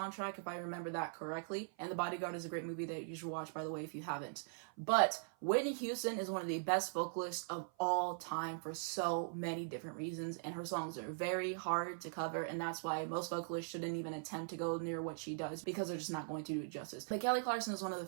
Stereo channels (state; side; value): silent; left; 50 dB below the other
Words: if I remember that correctly. And The Bodyguard is a great movie that you should watch, by the way, if you haven't. But Whitney Houston is one of the best vocalists of all time for so many different reasons. And her songs are very hard to cover. And that's why most vocalists shouldn't even attempt to go near what she does, because they're just not going to do it justice. But Kelly Clarkson is one of the